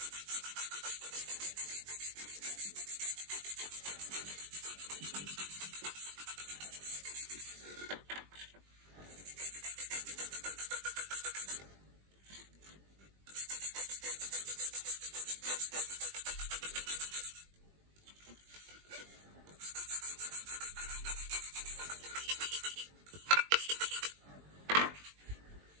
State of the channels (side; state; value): left; late; 20 ms